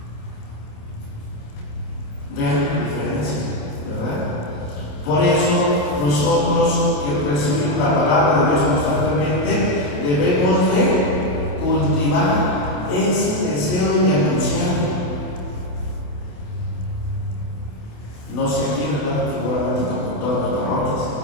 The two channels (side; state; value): right; late; 28 ms